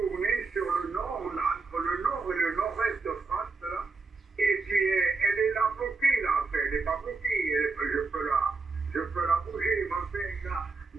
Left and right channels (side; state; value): left; quieter; 4.1 dB